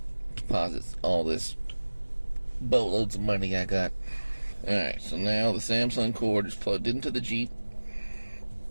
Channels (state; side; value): inverted; both; correlation -1.00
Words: deposit all this boatloads of money I got. Alright, so now the Samsung cord is plugged into the Jeep.